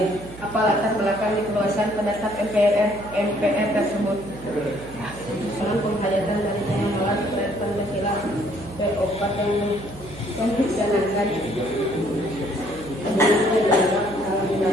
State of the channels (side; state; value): right; noise; hum, 17 dB below the sound